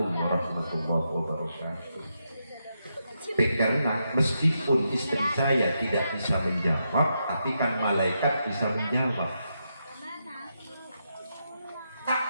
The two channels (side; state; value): both; inverted; correlation -0.83